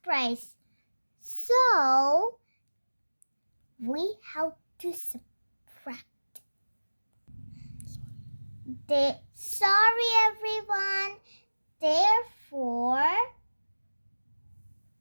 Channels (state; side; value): inverted; both; correlation -1.00